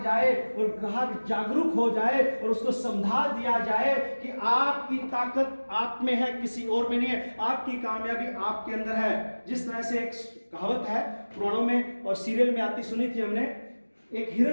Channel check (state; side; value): inverted; both; correlation -1.00